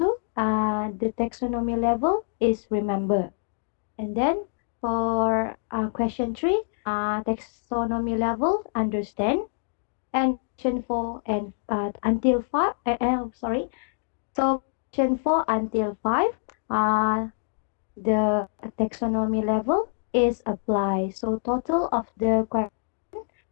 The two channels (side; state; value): right; silent; digital silence